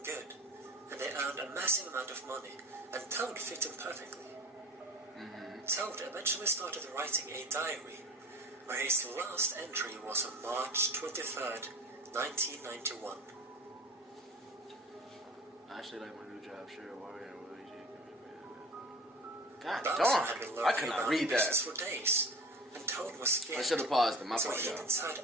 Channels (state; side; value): normal; both; correlation 0.40